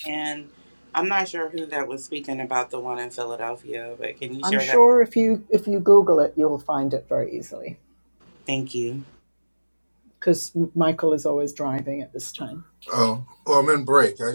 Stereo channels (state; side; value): inverted; both; correlation -1.00